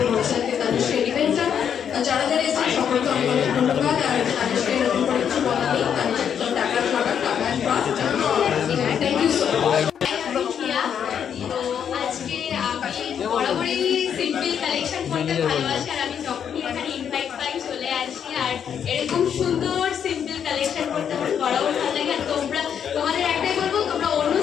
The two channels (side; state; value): right; quieter; 8.2 dB